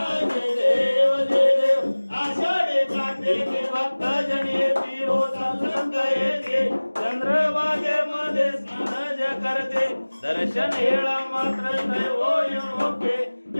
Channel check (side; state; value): both; inverted; correlation -1.00